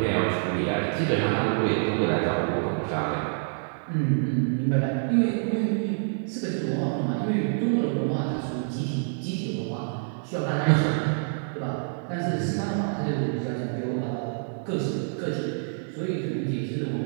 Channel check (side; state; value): left; silent; 60 dB below the other